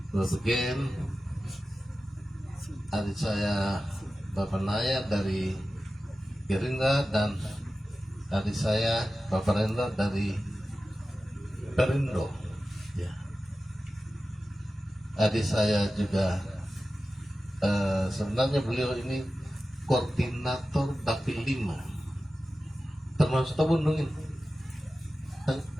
Bapak Gen, adik saya Bapak Naya dari Gerindra, dan adik saya Bapak Rendra dari Perindo. Ya, adik saya juga sebenarnya beliau ini koordinator Dapil 5, termasuk Tabundung ini.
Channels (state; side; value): normal; both; correlation 0.94